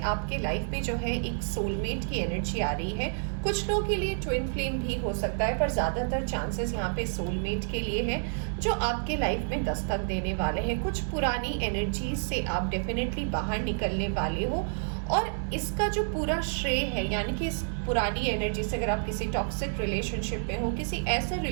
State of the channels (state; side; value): silent; left; 58 dB below the other